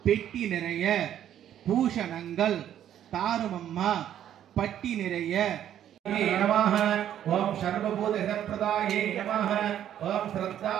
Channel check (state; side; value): quieter; left; 10.7 dB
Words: பெட்டி நிறைய பூஷணங்கள் தாருமம்மா பட்டி நிறைய नमः ओम सर्वभूत हितप्रदाये नमः ओम